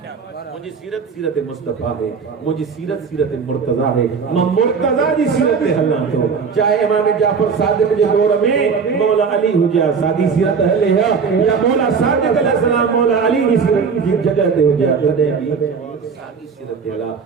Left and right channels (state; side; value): quieter; left; 5.7 dB